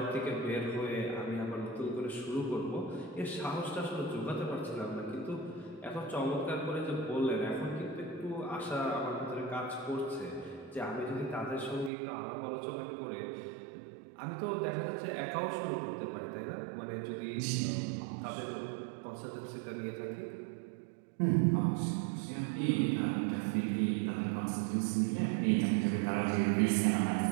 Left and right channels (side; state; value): left; drops out; at 11.9 s